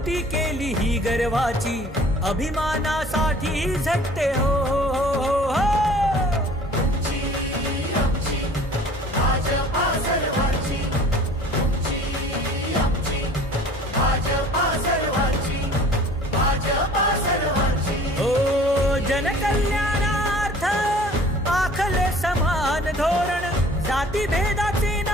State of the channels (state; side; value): normal; both; correlation 0.49